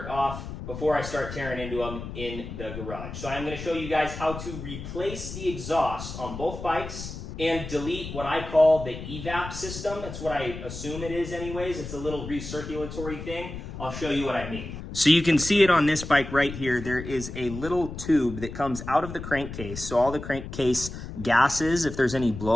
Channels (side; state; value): left; noise; rumble, 9 dB below the sound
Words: off before I start tearing into them in the garage. So I'm going to show you guys how to replace the exhaust on both bikes and delete what I call the evap system. That's what I assume it is anyways. It's a little recirculatory thing. I'll show you what I mean. So you can see it on this bike right here. There is a little tube that comes out of the crankcase. So all the crankcase gases, if there's any